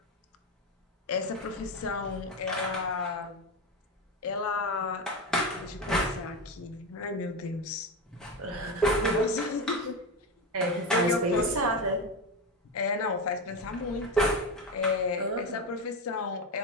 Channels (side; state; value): both; normal; correlation 0.17